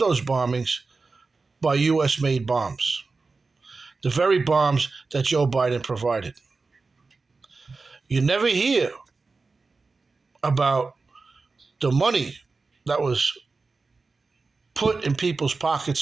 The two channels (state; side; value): quieter; left; 4.0 dB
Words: bombings by U.S.-made bombs, the very bombs that Joe Biden provided. You never hear about the money that was put in people's